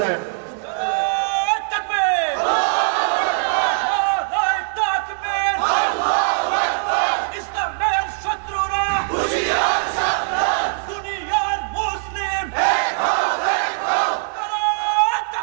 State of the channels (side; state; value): left; silent; 65 dB below the other